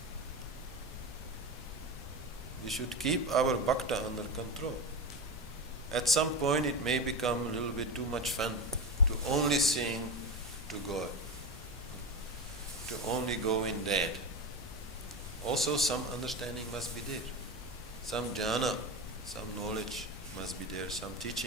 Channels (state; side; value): normal; both; correlation 0.21